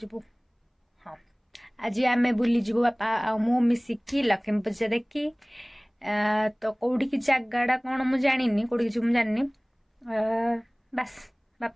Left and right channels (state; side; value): identical; both; correlation 1.00